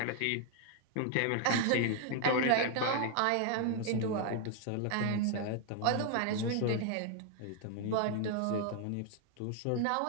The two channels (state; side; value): different; both; correlation 0.00